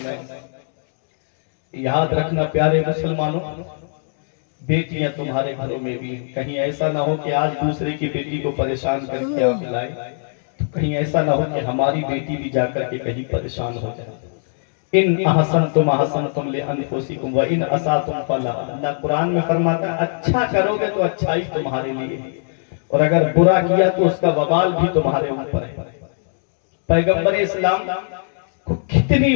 ہے۔ یاد رکھنا پیارے مسلمانوں، بیٹیاں تمہارے گھروں میں بھی، کہیں ایسا نہ ہو کہ آج دوسرے کی بیٹی کو پریشان کر کے آپ لائے، تو کہیں ایسا نہ ہو کہ ہماری بیٹی بھی جا کر کے کہیں پریشان ہو جائے۔ ان احسنتم احسنتم لانفسکم وان اسأتم فلہا، اللہ قرآن میں فرماتا ہے اچھا کرو گے تو اچھائی تمہارے لیے، اور اگر برا کیا تو اس کا وبال بھی تمہارے اوپر ہے۔ پیغمبر اسلام کو کتنی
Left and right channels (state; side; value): silent; right; digital silence